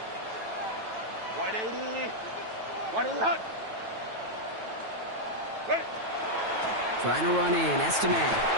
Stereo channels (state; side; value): late; left; 9.1 ms